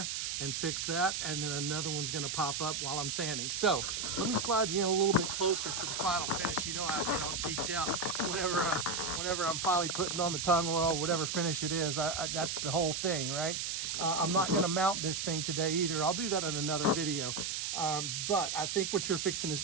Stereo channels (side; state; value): right; noise; hiss, 2 dB below the sound